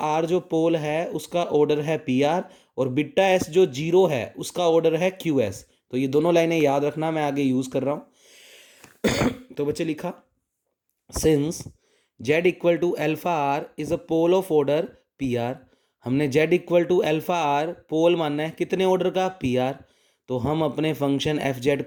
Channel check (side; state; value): both; identical; correlation 1.00